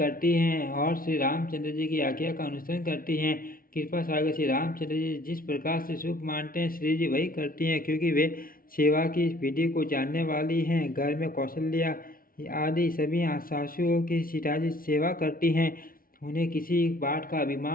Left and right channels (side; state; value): right; late; 0.42 ms